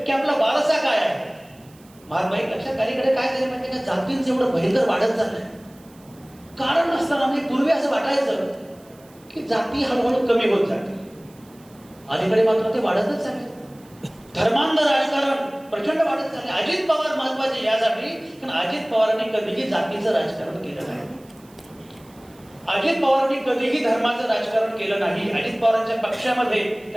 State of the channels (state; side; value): noise; right; hiss, 28 dB below the sound